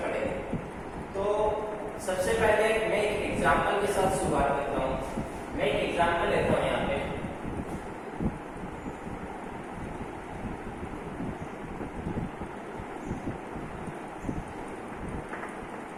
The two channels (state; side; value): identical; both; correlation 1.00